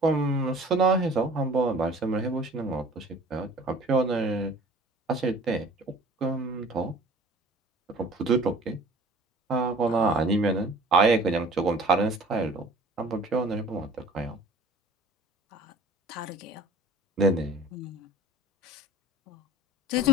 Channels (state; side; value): normal; both; correlation 0.47